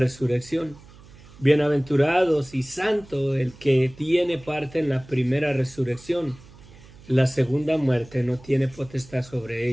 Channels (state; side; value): noise; right; hum, 22 dB below the sound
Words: Bienaventurados y santo el que tiene parte en la primera resurrección. La segunda muerte no tiene potestad sobre